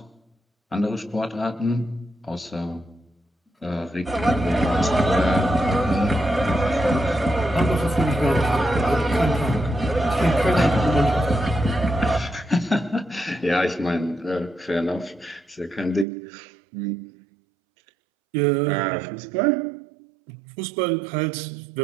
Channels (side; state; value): left; drops out; at 16.1 s